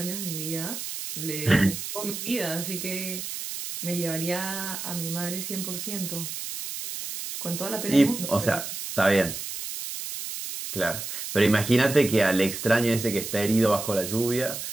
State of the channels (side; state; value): right; noise; hiss, 7 dB below the sound